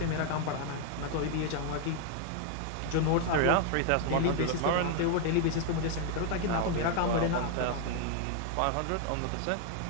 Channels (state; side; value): different; both; correlation 0.00